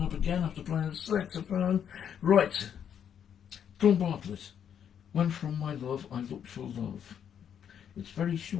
up again after playing the saxophone. Right, John Bartlett, When From My Love I Looked for Love. It's very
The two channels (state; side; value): quieter; right; 8.6 dB